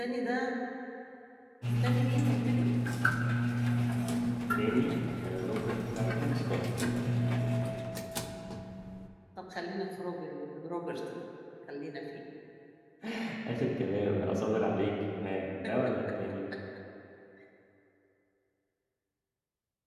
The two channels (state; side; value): identical; both; correlation 1.00